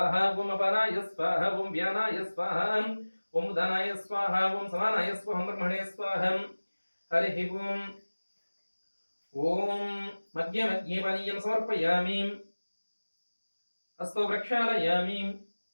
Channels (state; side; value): inverted; both; correlation -1.00